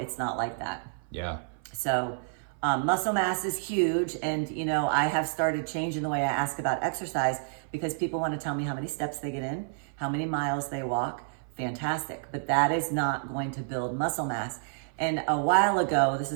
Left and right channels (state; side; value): silent; left; 55 dB below the other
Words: not like that. Yeah. So muscle mass is huge. And, I have started changing the way I ask about exercise because people want to tell me how many steps they get in, how many miles they walk. Fantastic. But that is not going to build muscle mass. And a while ago, this